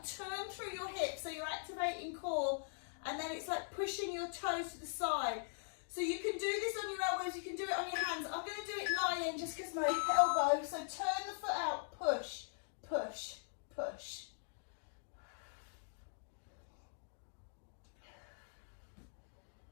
turn through your hips, so you're activating core, and then it's like pushing your toes to the side. So you can do this on your elbows, you can do it on your hands. I'm going to do it lying just because my elbow. So turn the foot out, push, push, push.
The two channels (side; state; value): right; silent; digital silence